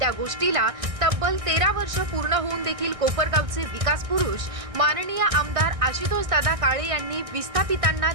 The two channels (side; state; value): left; late; 1.6 ms